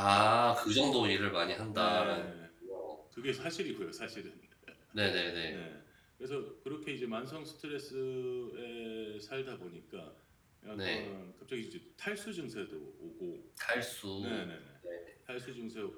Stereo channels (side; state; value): both; identical; correlation 1.00